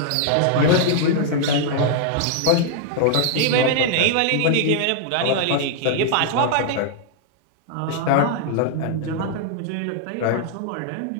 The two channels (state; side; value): different; both; correlation -0.01